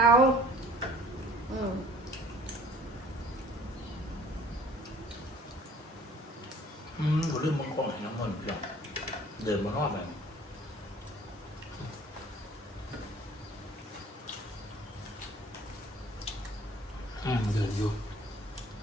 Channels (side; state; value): both; normal; correlation 0.51